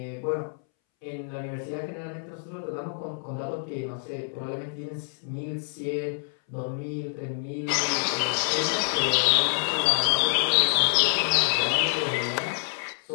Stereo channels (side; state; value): right; silent; 60 dB below the other